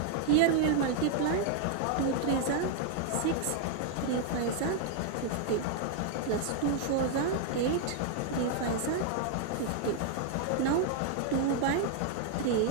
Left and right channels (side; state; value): both; different; correlation 0.00